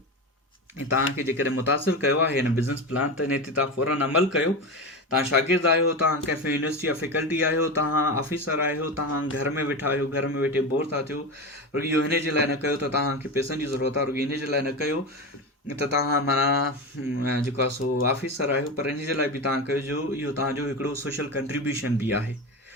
ऐं तव्हांखे जेकॾहिं मुतासिर कयो आहे हिन बिज़नेस प्लान त इन ते तव्हां फ़ौरन अमल कयो। तव्हां शागिर्द आहियो, तव्हां कंहिं यूनिवर्सिटी जा फैकल्टी आहियो, तव्हां ऑफिसर आहियो, तव्हां घर में वेठा आहियो, घर में वेठे बोर था थियो, रुॻो इहो हिन जे लाइ न कयो त तव्हांखे पैसनि जी ज़रूरत आहे, रुॻो इन जे लाइ न कयो त तव्हां माना जेको आहे सो ऑफिसर आहियो, पर इन जे लाइ बि तव्हां कजो इहो तव्हांजो हिकिड़ो सोशल कंट्रीब्यूशन बि आहे।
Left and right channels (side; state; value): both; normal; correlation 0.21